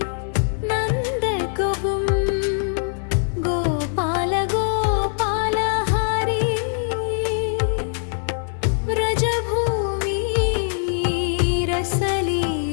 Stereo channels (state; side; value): silent; right; digital silence